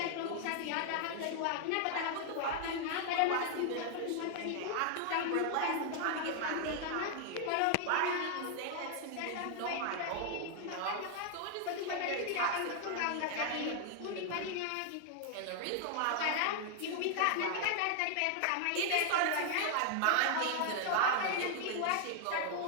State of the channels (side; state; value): both; different; correlation 0.00